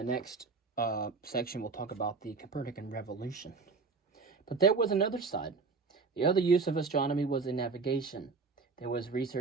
next section we'll talk about the Copernican revolution. But there was another side. The other use of astronomy was in navigation. There was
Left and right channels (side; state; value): left; quieter; 4.5 dB